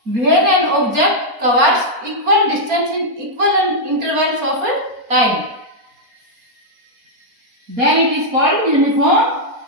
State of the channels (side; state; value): left; late; 4.3 ms